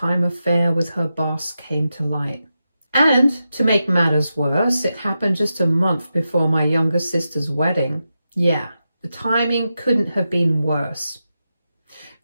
affair with her boss came to light. And to make matters worse, it happened just a month before my younger sister's wedding. Yeah, the timing couldn't have been worse.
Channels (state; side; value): inverted; both; correlation -0.89